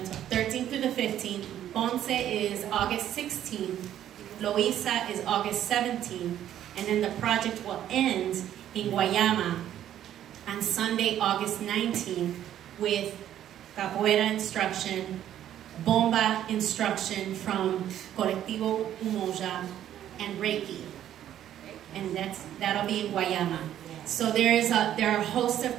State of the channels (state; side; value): quieter; left; 11.2 dB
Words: 12, 13th through the 15th, Ponce is August 16th, Loíza is August 17th, and then the project will end in Guayama on Sunday, August 19th, with capoeira instruction, bomba instruction from Colectivo Umoja, and Reiki. And that'll be in Guayama. So there are a host of